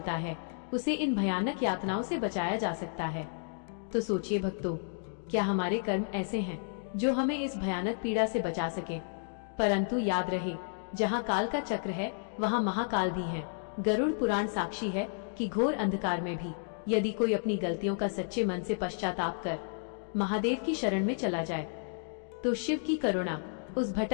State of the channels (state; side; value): silent; right; digital silence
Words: है, उसे इन भयानक यातनाओं से बचाया जा सकता है। तो सोचिए भक्तों, क्या हमारे कर्म ऐसे हैं जो हमें इस भयानक पीड़ा से बचा सके? परंतु याद रहे, जहाँ काल का चक्र है, वहाँ महाकाल भी है। गरुड़ पुराण साक्षी है कि घोर अंधकार में भी यदि कोई अपनी गलतियों का सच्चे मन से पश्चाताप कर महादेव की शरण में चला जाए, तो शिव की करुणा उस